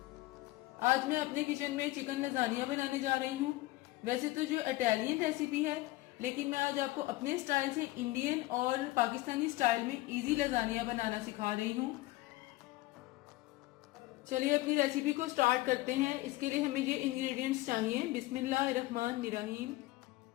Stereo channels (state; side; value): quieter; right; 19.0 dB